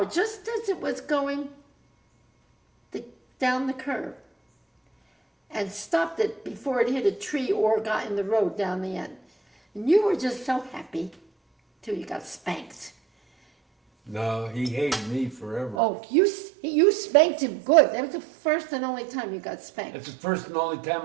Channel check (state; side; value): drops out; left; at 15.8 s